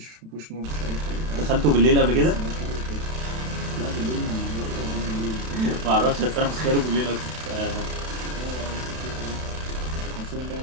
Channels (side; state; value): left; late; 32 ms